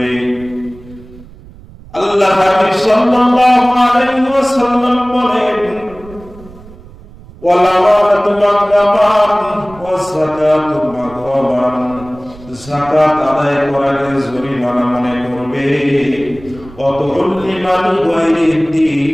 আল্লাহ হাবিব সাল্লাল্লাহু আলাইহি ওয়াসাল্লাম বলেন, ওয়াল আমানাতু মাগনামান ওয়াস যাকাতু মাগরামান, যাকাত আদায় করাকে জরিমানা মনে করবে। ওয়াতুল্লিমাল গায়রিদ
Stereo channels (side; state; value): right; noise; rumble, 20 dB below the sound